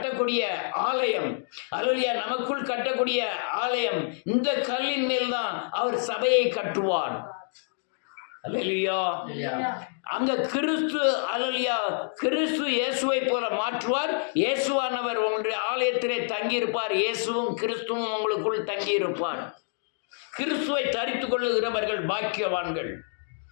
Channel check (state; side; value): silent; right; digital silence